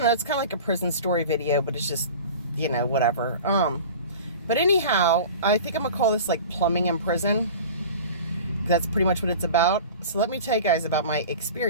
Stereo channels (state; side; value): inverted; both; correlation -0.37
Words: know, it's kind of like a prison story video, but it's just, whatever. But anyhow, I think I'm gonna call this like plumbing in prison. That's pretty much what it's about. So let me tell you guys about my